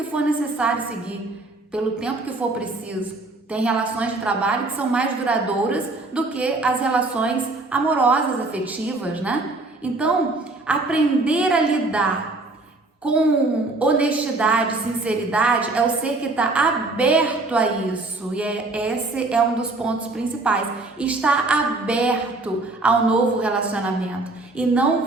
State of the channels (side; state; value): left; quieter; 3.1 dB